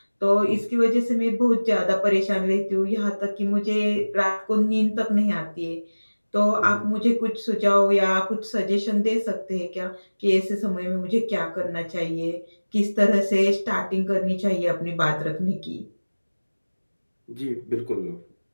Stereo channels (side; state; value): both; inverted; correlation -1.00